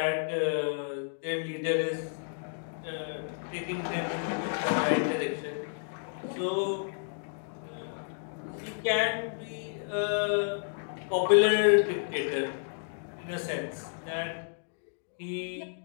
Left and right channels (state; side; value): silent; right; digital silence